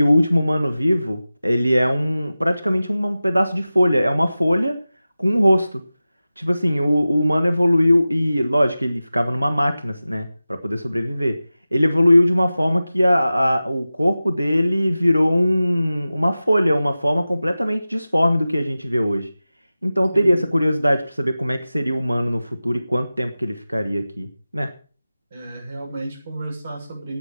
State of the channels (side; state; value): both; inverted; correlation -0.96